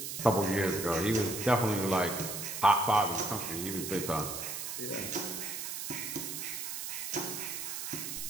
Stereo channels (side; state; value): right; noise; hiss, 5 dB below the sound